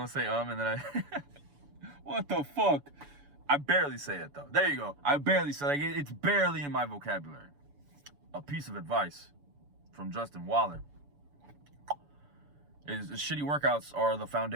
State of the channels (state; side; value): late; left; 7.0 ms